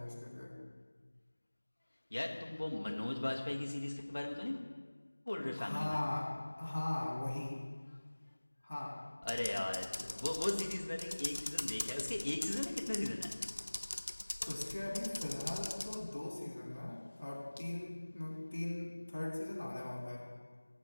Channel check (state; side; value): inverted; both; correlation -1.00